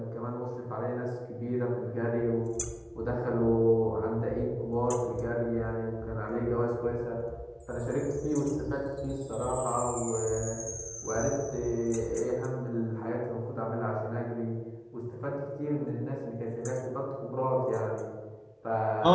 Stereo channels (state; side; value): identical; both; correlation 1.00